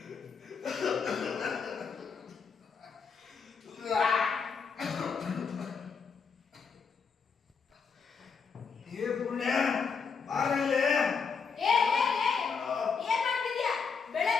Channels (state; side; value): quieter; right; 5.7 dB